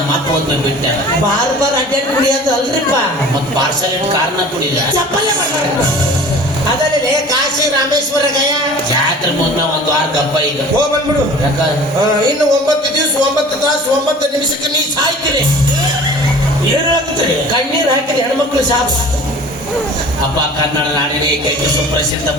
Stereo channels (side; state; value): both; normal; correlation 0.43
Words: ಅಪ್ಪ ಒಂದು ಬಿಟ್ಟೆ ಬಾರ್ ಅಡ್ಡಾಡಿ ಕುಡಿಯೋದು ಅಲ್ರಿಪ್ಪ. ಮತ್ ಪಾರ್ಸಲ್ ಇಟ್ಟು ಕಾರ್ನ ಕುಡಿದ ಚಪ್ಪಲೆ ಅದಲ್ಲೇ ಕಾಶಿ ರಾಮೇಶ್ವರ ಗಯ ಜಾತ್ರೆ ಮುನ್ನ ಒಂದು ವಾರ ಗಪ್ಪ ಈಗ ಹೋಗ್ ಬಂದ್ಬಿಡು. ಯಾಕ ಇನ್ನು 9 ದಿವಸ 9 ತಾಸು 9 ನಿಮಿಷಕ್ಕೆ ನೀ ಸಾಯ್ತೀರಿ. ಏನ್ ಆಗ್ತದೆ ಕಣ್ಣೀರ್ ಹಾಕಿದ ಹೆಣ್ಮಕ್ಳು ಸಾಕು. ಅಪ್ಪ ಕನ್ನಡ ನಾಡಿನ ಏಕೈಕ ಸುಪ್ರಸಿದ್ಧ